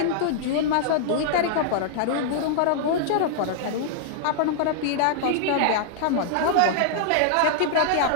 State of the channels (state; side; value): different; both; correlation -0.01